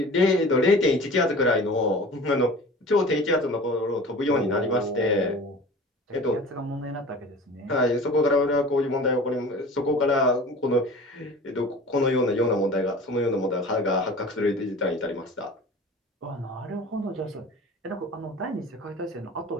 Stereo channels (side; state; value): both; normal; correlation 0.40